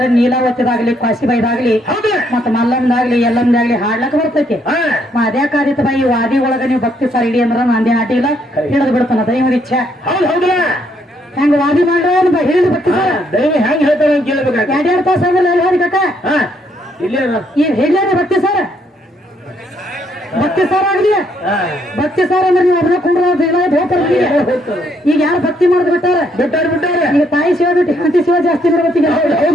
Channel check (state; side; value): normal; both; correlation 0.71